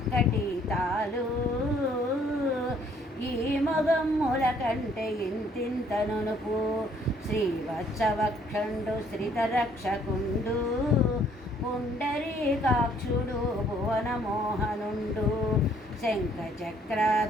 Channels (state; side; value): normal; both; correlation 0.63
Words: తాలు ఈ మొగమ్ముల కంటే ఇంతింత నునుపు శ్రీవత్సవక్షండు శ్రితరక్షకుండు పుండరీకాక్షుడు భువనమోహనుండు